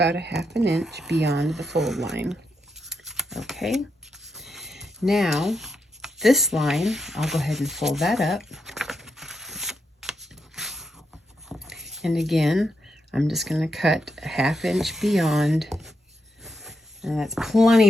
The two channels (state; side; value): normal; both; correlation 0.83